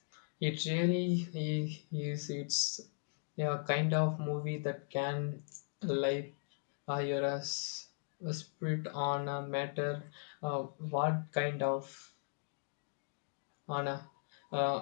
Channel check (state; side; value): silent; right; digital silence